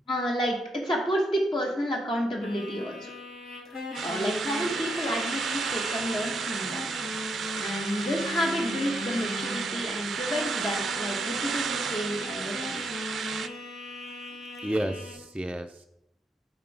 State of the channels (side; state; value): both; normal; correlation 0.78